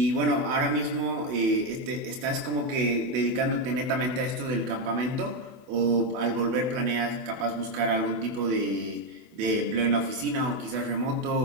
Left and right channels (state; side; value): late; left; 24 ms